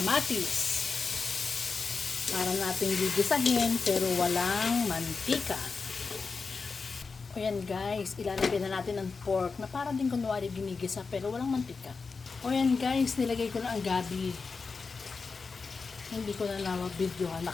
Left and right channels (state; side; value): quieter; right; 4.6 dB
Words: para nating gigisahin pero walang mantika. O yan guys, ilalagay na natin ang pork na para din kunwari ginigisa pero walang mantika. O yan guys, nilagay ko na ang gabi. Hindi ko na na-videohan,